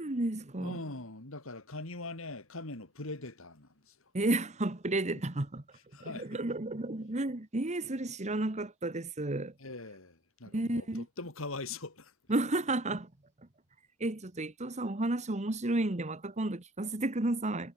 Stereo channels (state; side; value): normal; both; correlation 0.54